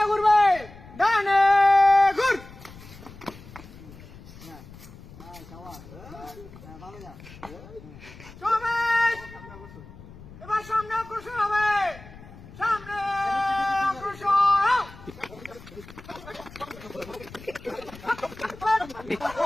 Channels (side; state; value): left; noise; rumble, 18 dB below the sound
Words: ঘুরবে। ডানে ঘুর। সমাবেশ এবার সামনে অগ্রসর হবে। সামনে অগ্রসর হও।